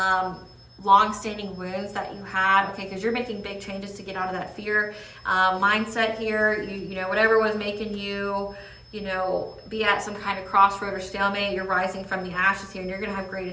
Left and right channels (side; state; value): both; identical; correlation 1.00